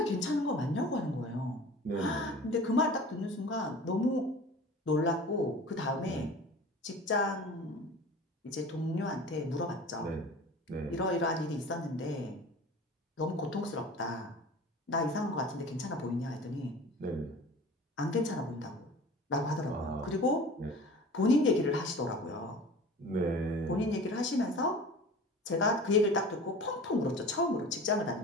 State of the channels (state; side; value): normal; both; correlation 0.40